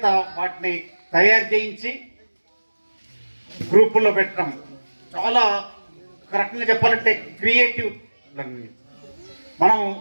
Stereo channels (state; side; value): inverted; both; correlation -1.00